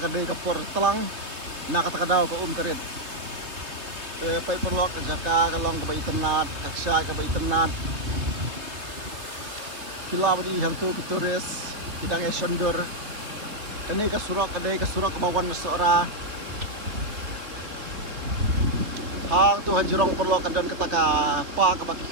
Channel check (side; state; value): left; late; 3.1 ms